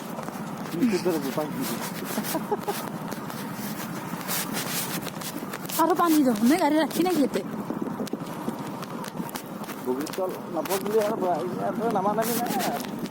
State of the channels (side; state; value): both; identical; correlation 1.00